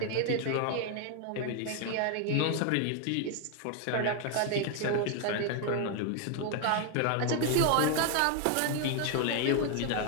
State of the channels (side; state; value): both; different; correlation 0.00